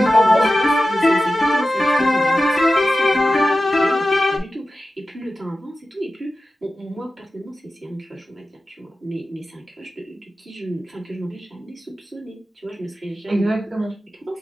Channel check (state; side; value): normal; both; correlation 0.94